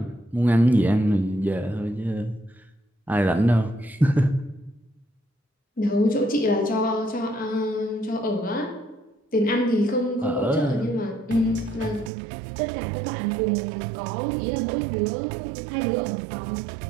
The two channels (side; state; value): left; drops out; at 12.1 s